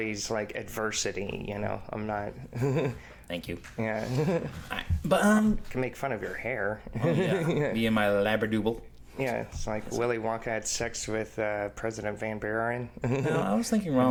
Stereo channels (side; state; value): both; identical; correlation 1.00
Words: like adversity. You know, I'm not. Thank you. Yeah. But can make fun of your hair. yeah. Me and my labradoodle. Yeah, it's like Willy Wonka had sex with President Van Buren. No, I was thinking